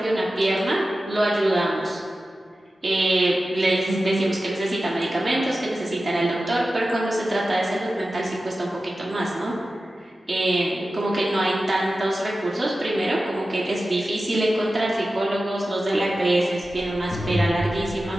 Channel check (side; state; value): both; normal; correlation 0.94